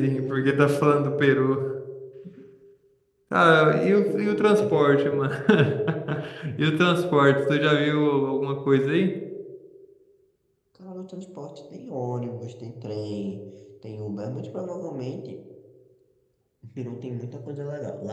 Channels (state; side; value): identical; both; correlation 1.00